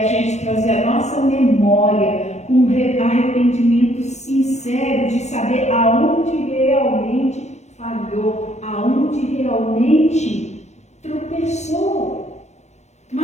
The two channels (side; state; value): right; late; 0.33 ms